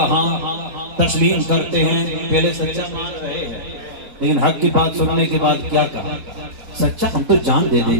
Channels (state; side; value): late; left; 4.1 ms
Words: تسلیم کرتے ہیں؟ پہلے سچا مان رہے ہیں لیکن حق کی بات سننے کے بعد کیا کہا؟ سچا ہم تو جان دے